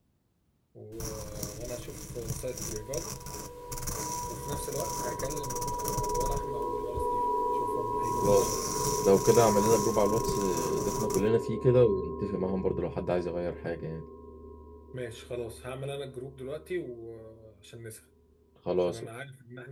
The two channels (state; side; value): identical; both; correlation 1.00